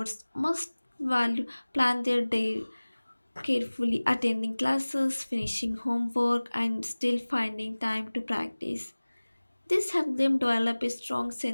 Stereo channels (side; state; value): both; inverted; correlation -1.00